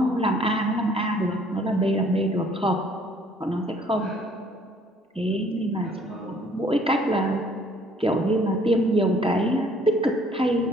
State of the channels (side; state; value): both; normal; correlation 0.59